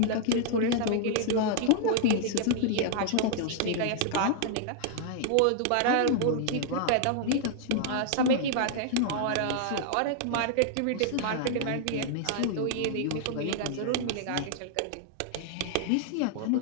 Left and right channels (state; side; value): different; both; correlation -0.01